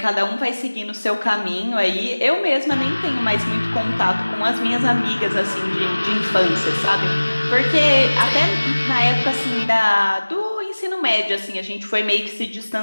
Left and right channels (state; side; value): inverted; both; correlation -1.00